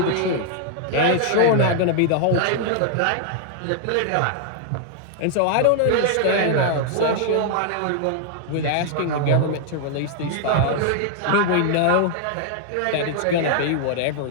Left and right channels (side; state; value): both; different; correlation 0.00